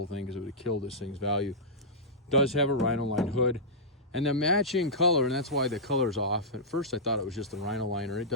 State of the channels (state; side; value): normal; both; correlation -0.13